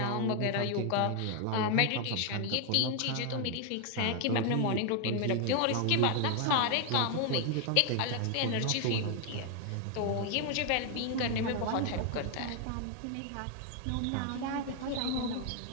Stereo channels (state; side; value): different; both; correlation 0.00